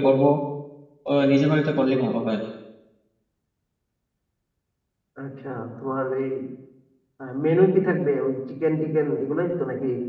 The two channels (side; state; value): both; identical; correlation 1.00